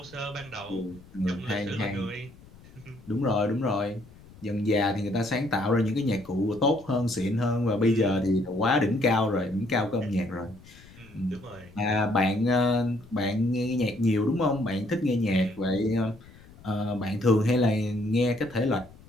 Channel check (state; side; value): noise; left; rumble, 22 dB below the sound